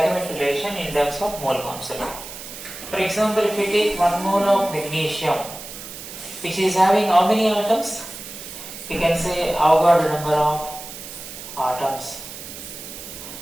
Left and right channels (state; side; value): noise; right; hiss, 12 dB below the sound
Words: relation in terms of mole concept. For example, if we take 1 mole of magnesium, which is having how many atoms? We can say Avogadro number of atoms.